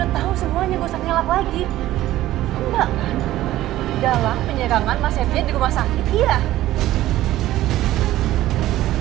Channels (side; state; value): left; quieter; 14.9 dB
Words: tahu semuanya, gak usah ngelak lagi. Enggak kan? Dalam penyerangan Mas Septian di rumah sakit, iya.